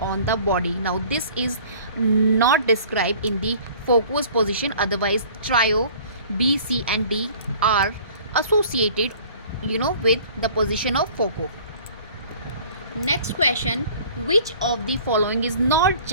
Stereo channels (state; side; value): inverted; both; correlation -0.49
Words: the body. Now this is not described in the Foucault's position, otherwise trio B, C and D are associated with the position of Foucault. Next question, which of the following is not